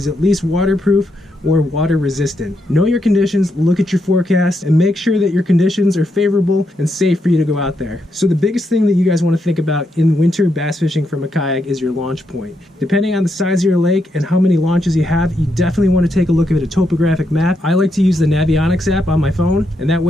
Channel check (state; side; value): normal; both; correlation 0.81